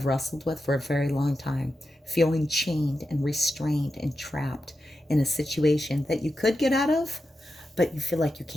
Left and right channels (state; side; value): normal; both; correlation 0.89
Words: wrestled with for a very long time, feeling chained and restrained and trapped in a situation that you could get out of, but you feel like you